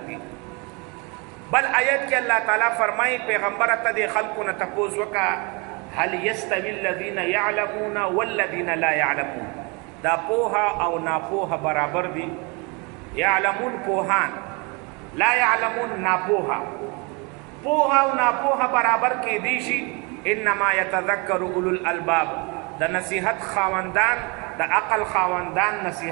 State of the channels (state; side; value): quieter; left; 30.2 dB